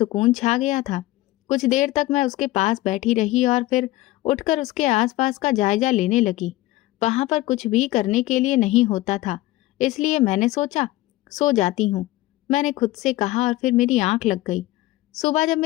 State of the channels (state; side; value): quieter; right; 17.6 dB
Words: छा गया था। कुछ देर तक मैं उसके पास बैठी रही और फिर उठकर उसके आसपास का जायजा लेने लगी। वहां पर कुछ भी करने के लिए नहीं होता था, इसलिए मैंने सोचा सो जाती हूँ। मैंने खुद से कहा और फिर मेरी आंख लग गई। सुबह जब